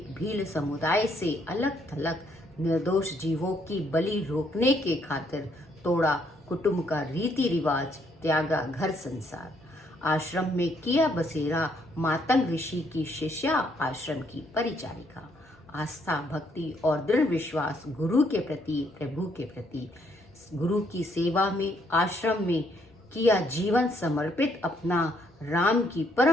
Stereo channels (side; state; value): both; normal; correlation 0.71